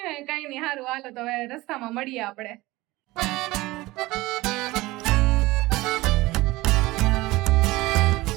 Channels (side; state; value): left; quieter; 19.8 dB